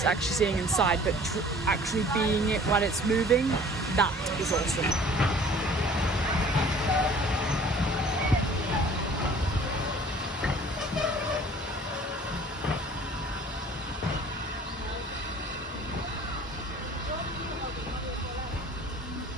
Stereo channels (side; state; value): both; normal; correlation 0.50